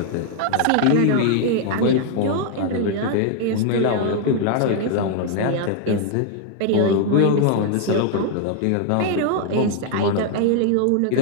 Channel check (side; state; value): both; different; correlation 0.00